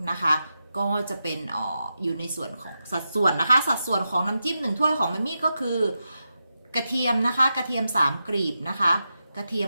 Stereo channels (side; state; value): both; inverted; correlation -0.89